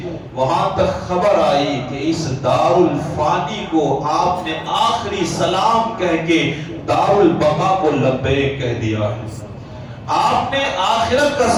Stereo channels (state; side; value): identical; both; correlation 1.00